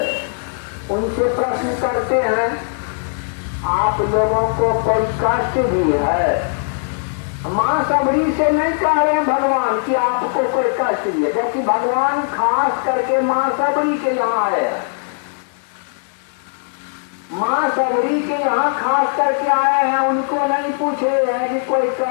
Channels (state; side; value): silent; right; digital silence